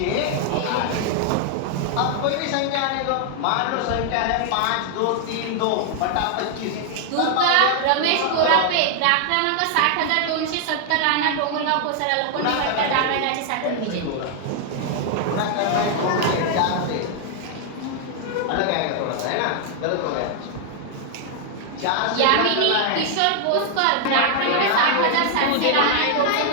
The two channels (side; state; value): both; different; correlation 0.00